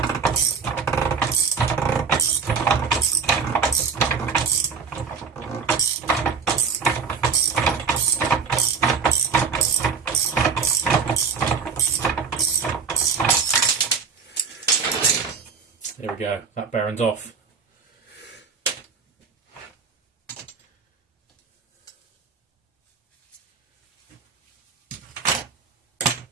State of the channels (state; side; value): quieter; left; 5.7 dB